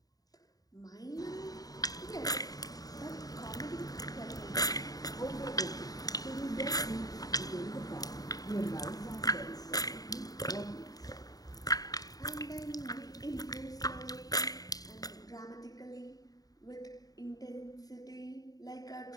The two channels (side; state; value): right; late; 0.18 ms